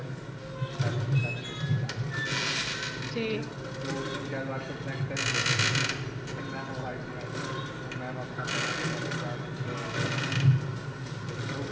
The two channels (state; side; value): identical; both; correlation 1.00